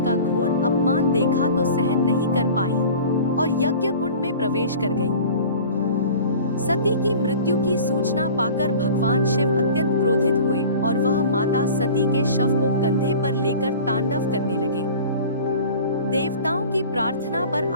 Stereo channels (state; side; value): inverted; both; correlation -0.41